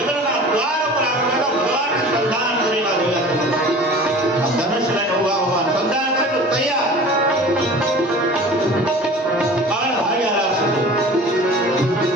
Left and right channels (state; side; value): normal; both; correlation 0.41